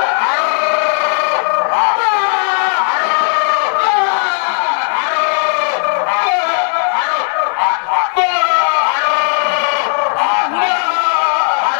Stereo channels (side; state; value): right; silent; 56 dB below the other